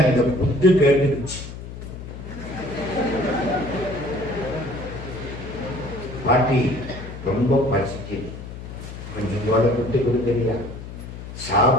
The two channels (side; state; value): left; noise; hum, 11 dB below the sound